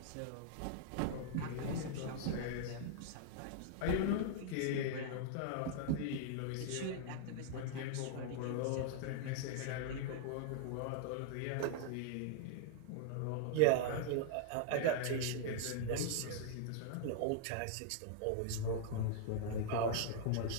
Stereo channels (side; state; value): both; different; correlation -0.01